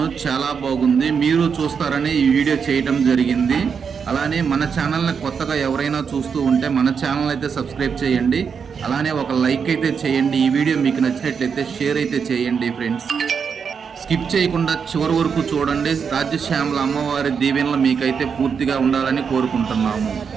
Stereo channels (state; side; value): quieter; left; 6.4 dB